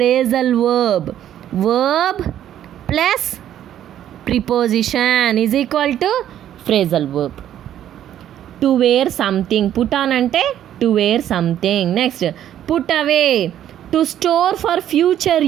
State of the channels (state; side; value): quieter; left; 11.1 dB